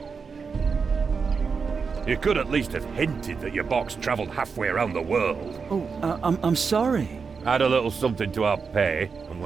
You could at least have hinted that your box travelled halfway around the world. Oh, I'm sorry. Add a little something to our pay, and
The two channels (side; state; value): left; quieter; 5.4 dB